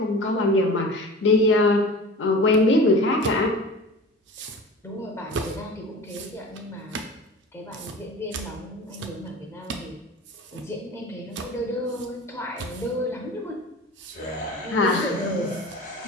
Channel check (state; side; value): normal; both; correlation 0.37